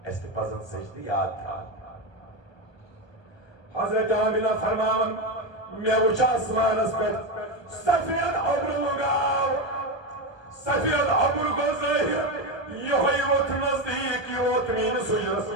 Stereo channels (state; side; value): late; right; 1.2 ms